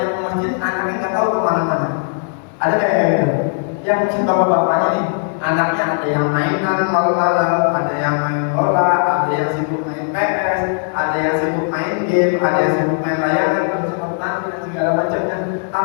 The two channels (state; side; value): silent; right; 59 dB below the other